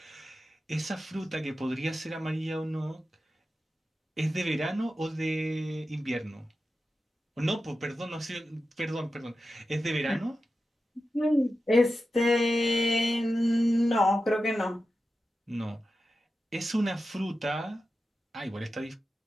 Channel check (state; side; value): normal; both; correlation 0.92